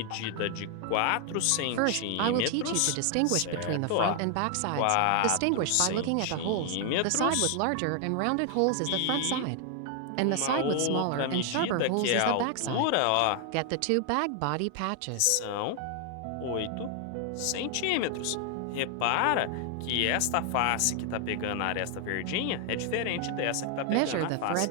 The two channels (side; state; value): both; different; correlation 0.00